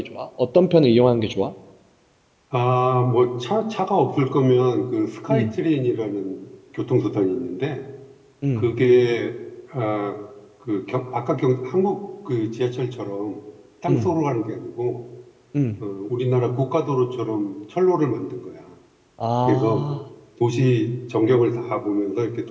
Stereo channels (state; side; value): identical; both; correlation 1.00